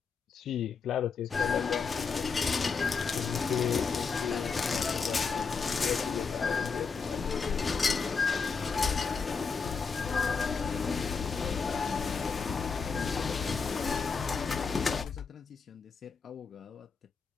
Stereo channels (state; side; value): quieter; right; 5.3 dB